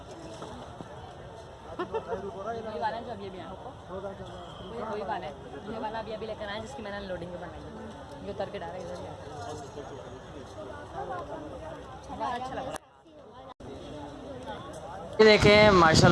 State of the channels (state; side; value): identical; both; correlation 1.00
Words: वही वाला है जो अभी आया वही वाला है, ये वाला अभी लेकर आए जिसकी मैंने लोडिंग के बनाई, ये उतर के डाला इधर ही अच्छा लग रहा है। ये देखें